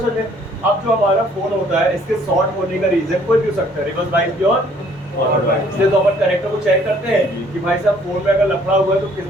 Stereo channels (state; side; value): normal; both; correlation 0.60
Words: में। अब जो हमारा फोन होता है, इसके शॉर्ट होने का रीजन कोई भी हो सकता है, रिवर्स वाइज भी और फॉरवर्ड वाइज। इसलिए तो अपन कनेक्टर को चेक करते हैं कि भाई साहब फोन में अगर लफड़ा हुआ है तो किस